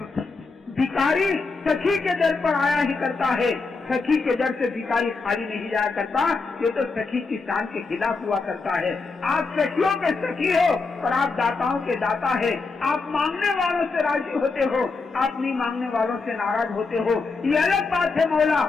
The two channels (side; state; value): right; quieter; 4.1 dB